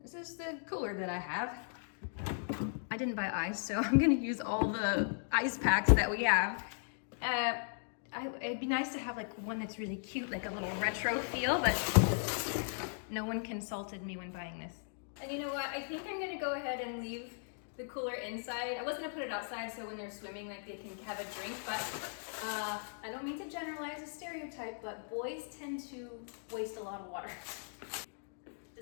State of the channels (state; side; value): silent; right; digital silence